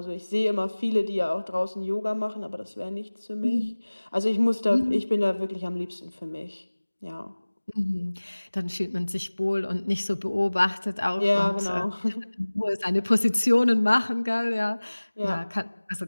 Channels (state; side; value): inverted; both; correlation -1.00